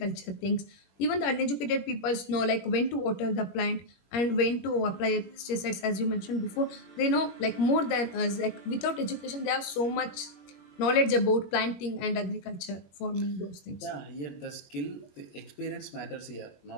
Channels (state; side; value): late; right; 21 ms